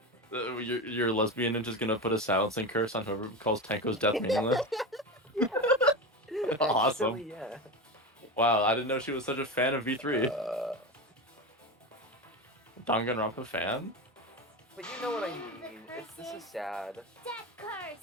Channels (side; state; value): both; normal; correlation 0.22